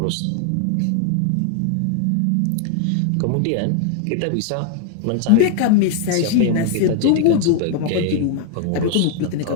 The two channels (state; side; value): different; both; correlation 0.00